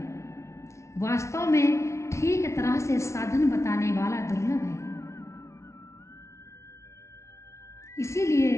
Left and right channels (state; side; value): late; right; 0.13 ms